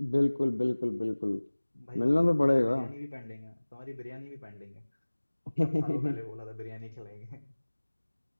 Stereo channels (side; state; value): both; inverted; correlation -1.00